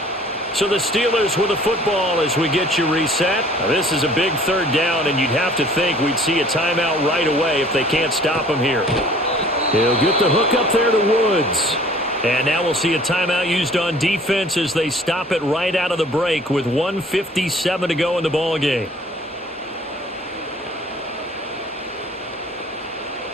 So the Steelers with the football as we get you reset. Now this is a big 3rd down, and you'd have to think we'd see a timeout right away if they can't stop him here. He'll get the hook up there to Woods. And now we'll see a timeout used on defense as they stop it right out of the break with 1:57 to go in the ballgame.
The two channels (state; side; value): normal; both; correlation 0.52